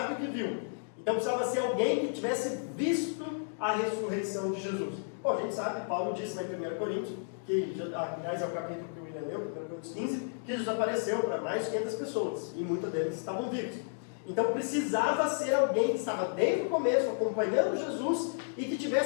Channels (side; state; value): right; silent; digital silence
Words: o que viu. Então precisava ser alguém que tivesse visto a ressurreição de Jesus. Bom, a gente sabe, Paulo disse lá em 1 Coríntios, que, aliás é o capítulo que o William leu, 1 Coríntios 15, que Jesus apareceu para mais de 500 pessoas, e muitos deles estavam vivos. Então precisava ser alguém que estava desde o começo acompanhando Jesus e que